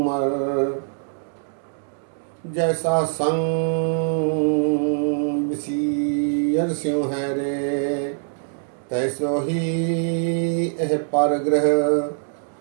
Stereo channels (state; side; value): silent; left; digital silence